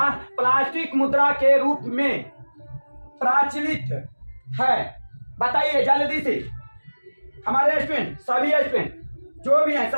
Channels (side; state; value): both; inverted; correlation -1.00